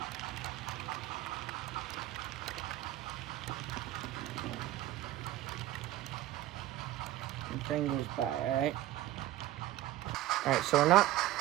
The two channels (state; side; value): quieter; left; 14.8 dB